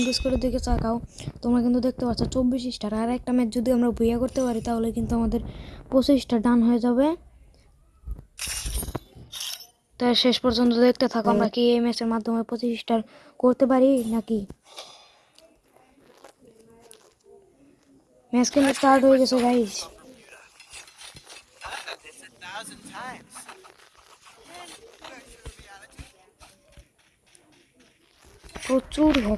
করে দিকে চাকাও, তোমরা কিন্তু দেখতে পাচ্ছ 24 স্টার। আর একটা ম্যাচ যদি আমরা ভুইয়া করতে পারি তাহলে কিন্তু আমাদের 25টা ডান হয়ে যাবে। তাই শেষ পর্যন্ত দেখতে থাকো আমরা কি এই ম্যাচের মাধ্যমে 25 স্টার করতে পারি নাকি। ম্যাচ কিন্তু স্টার্ট হয়ে গেছে গাইস। প্রচুর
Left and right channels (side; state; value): both; identical; correlation 1.00